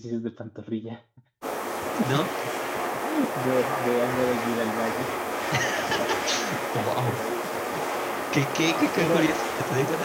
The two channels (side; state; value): both; identical; correlation 1.00